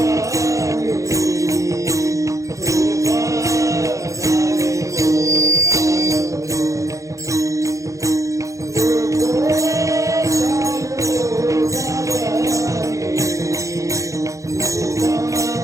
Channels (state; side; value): late; left; 0.15 ms